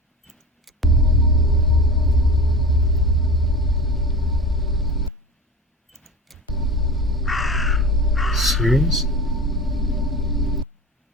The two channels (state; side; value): normal; both; correlation 0.31